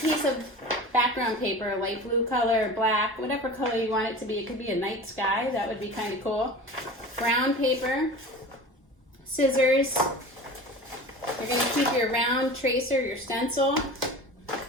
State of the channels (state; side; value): normal; both; correlation 0.35